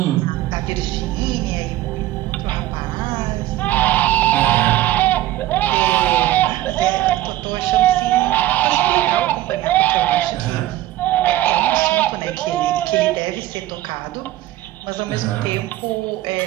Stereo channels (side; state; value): left; quieter; 15.0 dB